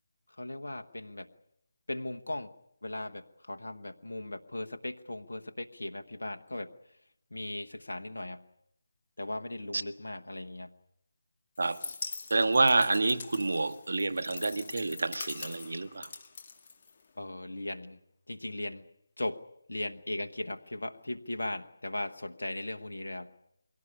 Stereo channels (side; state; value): both; inverted; correlation -0.96